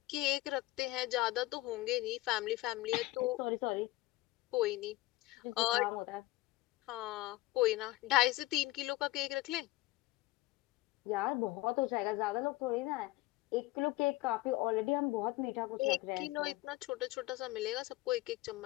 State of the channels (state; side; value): quieter; right; 18.6 dB